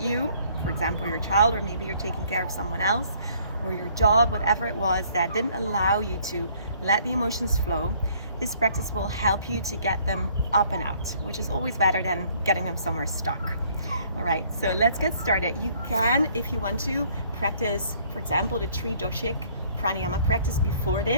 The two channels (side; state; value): both; inverted; correlation -0.61